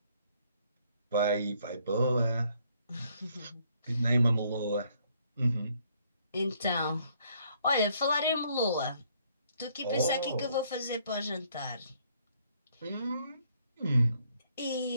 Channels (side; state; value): both; inverted; correlation -0.67